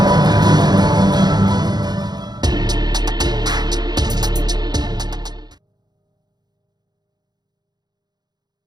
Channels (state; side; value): late; left; 0.20 ms